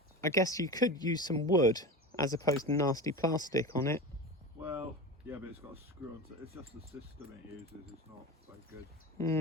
I guess you could use some wood as opposed to nasty plastic on it. Well, yeah, but it's got a screw on. It's just the system it uses. It's not very good.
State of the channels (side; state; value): both; normal; correlation 0.27